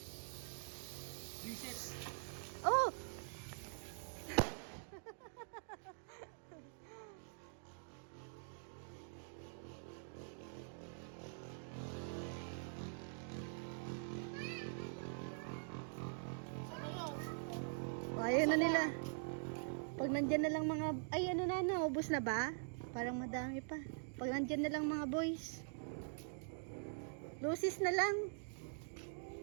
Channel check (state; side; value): silent; left; digital silence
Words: Reset. Oh! Ayaw na nila. Pag nandyan na lang mga... Ay, ano na, naubos na ba? Parang madami pa. Pag nandyan na lang mga boys. Lucis na lang.